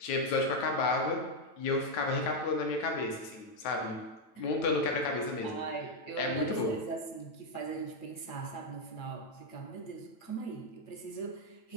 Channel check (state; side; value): late; right; 9.0 ms